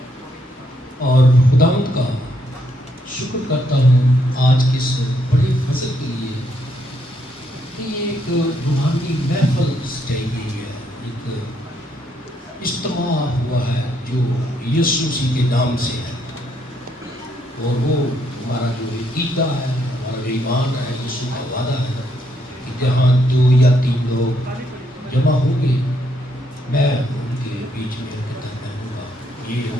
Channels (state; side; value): normal; both; correlation 0.74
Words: اور خداوند کا شکر کرتا ہوں آج کے اس بڑے فضل کے لیے کہ یہ ایک روحانی محفل سجائی گئی ہے، ایک اجتماع ہوا ہے جو یسوع مسیح کے نام سے ہے، اور وہ ہمارا جو عقیدہ ہے، ہمارا جو ایمان ہے، یسوع کا وعدہ ہے کہ جہاں 2 یا 3 لوگ جمع ہوں گے میں ان کے بیچ میں درمیان ہوں گا۔ یہ